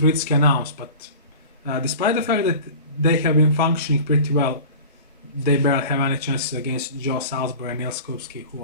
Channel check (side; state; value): both; inverted; correlation -0.38